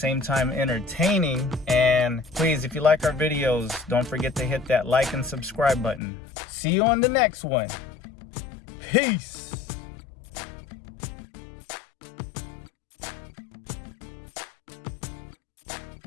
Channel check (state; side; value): drops out; right; at 6.0 s